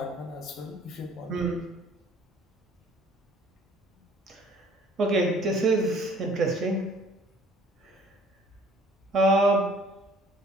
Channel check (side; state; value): both; normal; correlation 0.55